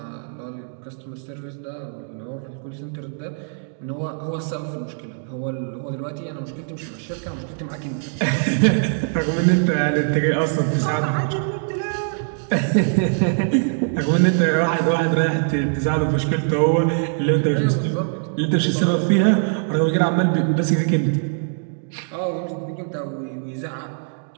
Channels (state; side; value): silent; left; digital silence